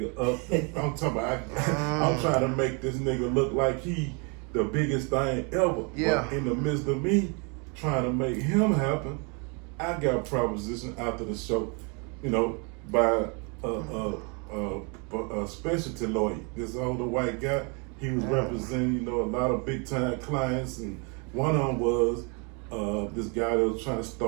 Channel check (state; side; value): quieter; left; 33.6 dB